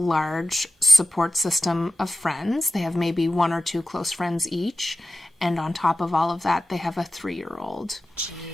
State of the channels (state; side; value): normal; both; correlation 0.92